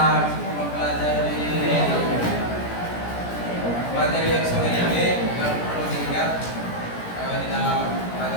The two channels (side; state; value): right; late; 17 ms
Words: mempelajari materi yang sore ini yang perlu diingat di dalam